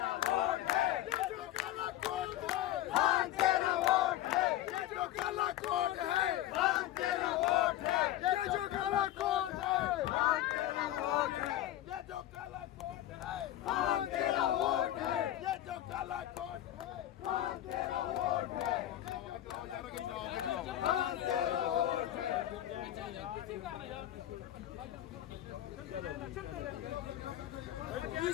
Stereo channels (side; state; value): right; quieter; 13.5 dB